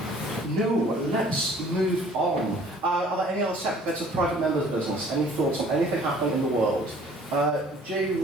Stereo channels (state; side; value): normal; both; correlation 0.54